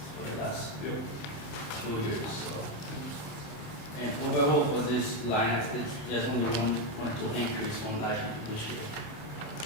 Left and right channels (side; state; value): right; late; 27 ms